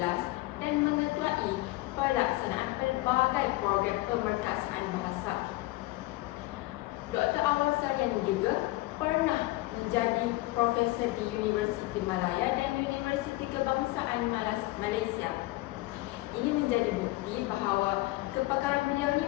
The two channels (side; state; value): right; quieter; 19.8 dB